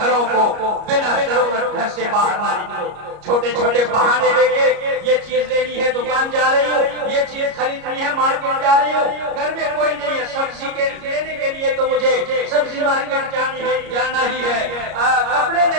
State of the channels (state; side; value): late; left; 33 ms